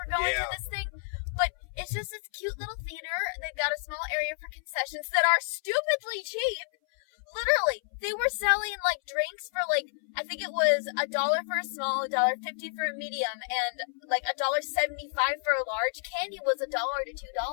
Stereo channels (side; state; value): right; silent; 58 dB below the other